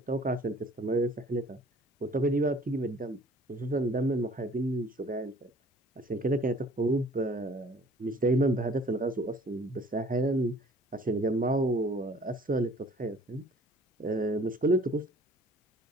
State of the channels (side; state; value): both; normal; correlation 0.53